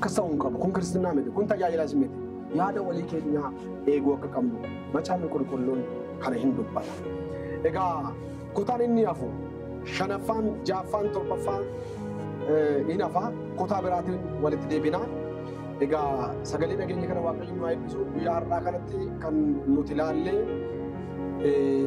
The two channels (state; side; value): identical; both; correlation 1.00